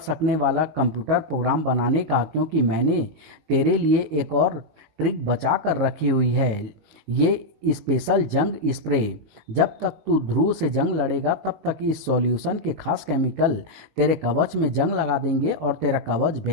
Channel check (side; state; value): left; late; 19 ms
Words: वाला कंप्यूटर प्रोग्राम बनाने का, क्योंकि मैंने तेरे लिए एक और ट्रिक बचा कर रखी हुई है। ये स्पेशल जंग स्प्रे। जब तक तू ध्रुव से जंग लड़ेगा तब तक इस सॉल्यूशन के खास केमिकल तेरे कवच में जंग लगा देंगे और तेरा कवच